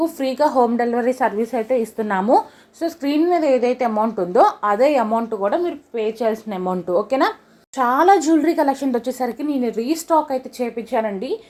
ఫ్రీగా హోమ్ డెలివరీ సర్వీస్ అయితే ఇస్తున్నాము. సో స్క్రీన్ మీద ఏదైతే అమౌంట్ ఉందో అదే అమౌంట్ కూడా మీరు పే చేయాల్సిన అమౌంట్, ఓకేనా. చాలా జ్యువెలరీ కలెక్షన్ వచ్చేసరికి నేను రీస్టాక్ అయితే చేయించానండి.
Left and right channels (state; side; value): identical; both; correlation 1.00